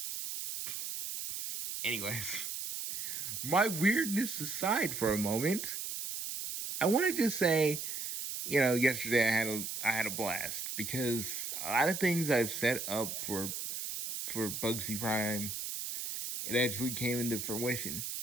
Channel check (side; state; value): right; noise; hiss, 5 dB below the sound